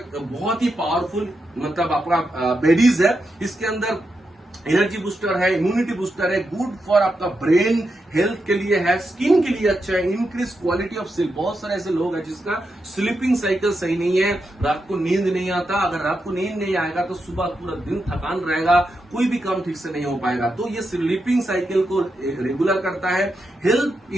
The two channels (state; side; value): normal; both; correlation 0.86